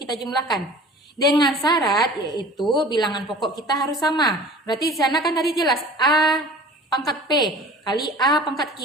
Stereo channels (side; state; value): both; normal; correlation 0.44